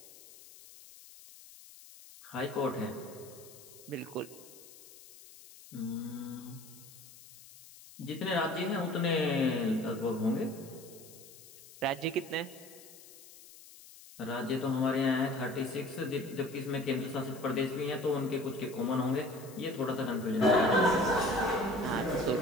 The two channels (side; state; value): left; noise; hiss, 20 dB below the sound